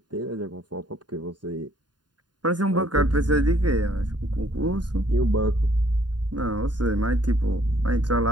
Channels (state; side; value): late; left; 0.70 ms